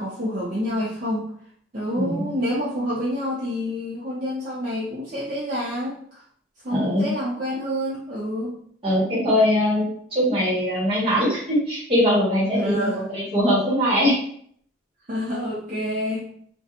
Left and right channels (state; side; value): normal; both; correlation 0.43